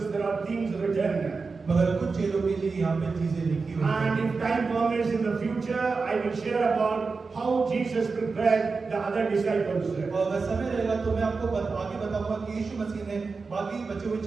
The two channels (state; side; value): quieter; left; 4.4 dB